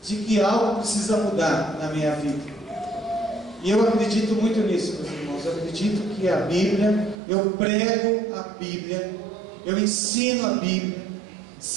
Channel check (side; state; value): left; drops out; at 7.2 s